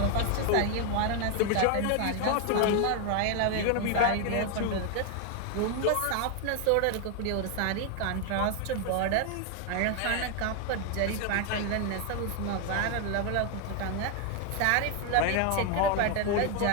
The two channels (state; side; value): different; both; correlation 0.01